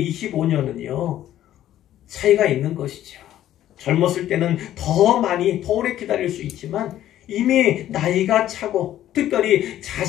25년은요, 차이가 있는 것이죠. 젊었을 때는 더 많이, 더 오래 기다릴 수 있지만 이미 나이가 차고 특별히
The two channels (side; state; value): right; quieter; 12.5 dB